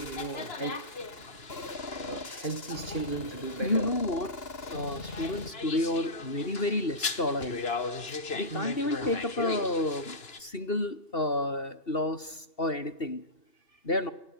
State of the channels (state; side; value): late; right; 2.9 ms